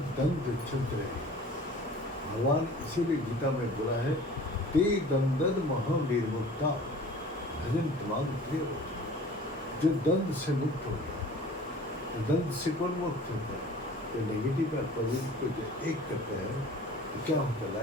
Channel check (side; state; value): both; normal; correlation 0.45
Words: दंड चलते रहे। भगवान इसीलिए गीता में बोला है, ते दंदन महा निर्मुक्ता भजन दिमाग प्रिय हो। जो दंड से मुक्त हो गया, तो दंड से कौन मुक्त होता है? तो नेगेटिव और पॉजिटिव को जो एक करता है तो क्या होता है?